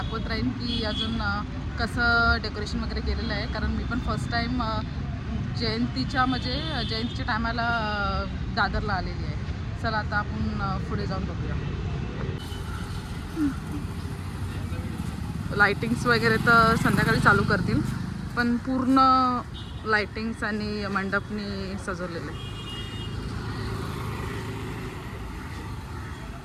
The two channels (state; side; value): identical; both; correlation 1.00